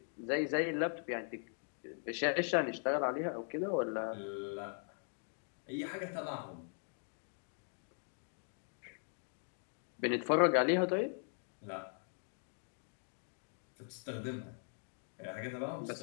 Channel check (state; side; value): silent; right; 51 dB below the other